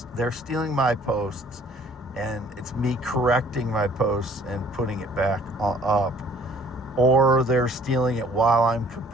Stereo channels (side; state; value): both; normal; correlation 0.56